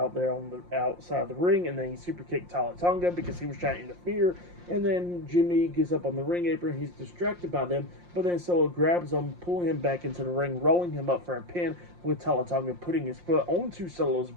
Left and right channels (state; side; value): late; left; 5.7 ms